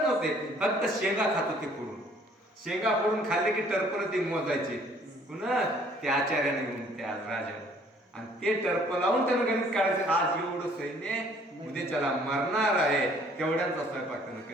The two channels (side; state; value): both; normal; correlation 0.59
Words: नव्हते, फक्त शेंगा खात होते फोडून. शेंगा फोडून खाल्ले की टर्पण ते मोजायचे पुन्हा त्या आचार्याने घेऊन त्या राजाने. आणि ते टर्प लावून त्यानं गणित काढायचं, आज एवढं सैन्य उद्याच्याला मरणार आहे, तेवढ्यांचा स्वयंपाक त्यानं